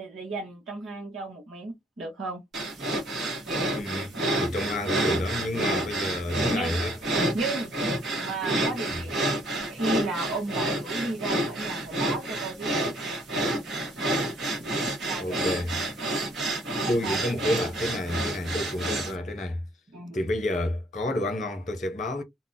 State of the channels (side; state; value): both; normal; correlation 0.63